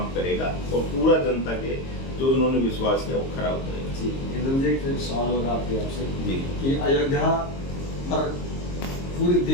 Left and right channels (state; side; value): late; right; 22 ms